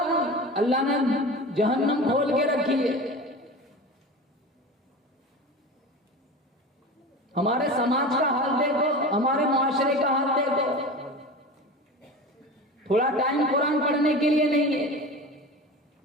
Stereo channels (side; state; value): both; normal; correlation 0.31